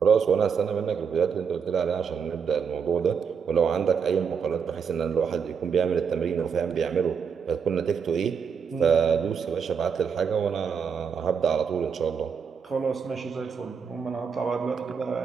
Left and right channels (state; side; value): quieter; left; 6.5 dB